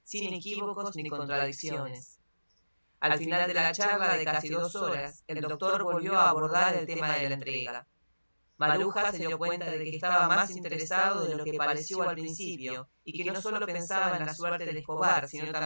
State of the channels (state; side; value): inverted; both; correlation -1.00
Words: sin equívocos ni contradicciones. Al final de la charla de casi 2 horas, el doctor volvió a abordar el tema de la entrega. Maruja se dio cuenta de que estaba más interesado de lo que pareció al principio y que no solo pensaba en la suerte de Escobar, sino